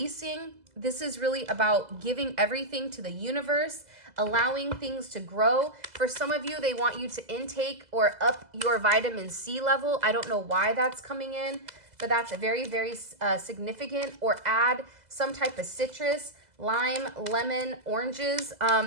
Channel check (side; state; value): left; late; 2.0 ms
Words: This is really about giving everything to the universe, allowing things to grow. For some of you, they want you to intake or up your vitamin C level. I don't know why that's coming in, but that's a very, very significant. Or add some type of citrus, lime, lemon, oranges